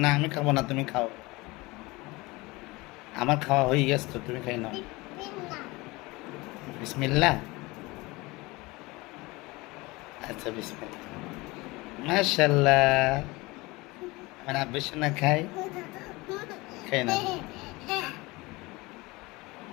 না আমি খাবো না, তুমি খাও। আমার খাওয়া হয়ে গেছে তো, তুমি খাই নাও। বিসমিল্লাহ। আচ্ছা বিসমিল্লাহ। মাশাল্লাহ, আমার আব্বু সোনা খাই, খাই না।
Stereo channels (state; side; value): quieter; right; 22.8 dB